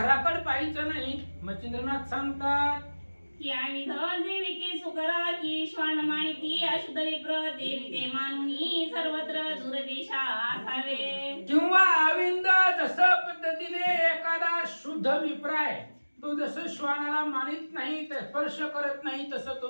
पाहायचं नाही. मच्छिंद्रनाथ सांगतात, की आविध देवी की सुकरा की श्वान माणिकी अशुद्ध विप्र देवी ते मानुनी सर्वत्र दूरदेशा असावे. किंवा आविंद जसं पद्धतीने एखादा शुद्ध विप्राय, तो जसं श्वानाला मानित नाही, स्पर्श करत नाही, तसं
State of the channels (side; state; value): both; inverted; correlation -1.00